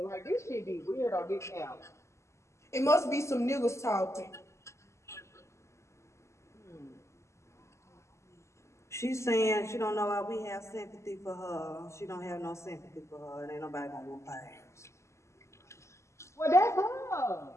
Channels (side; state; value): right; late; 0.13 ms